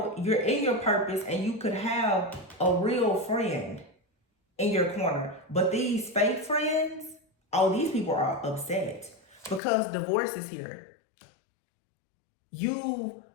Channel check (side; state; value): right; drops out; at 9.6 s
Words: you're in your purpose and you could have a real friend in your corner. But these fake friends, oh, these people are upset because divorce is here. You